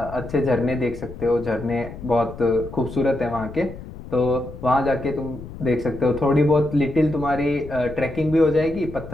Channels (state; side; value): noise; left; rumble, 13 dB below the sound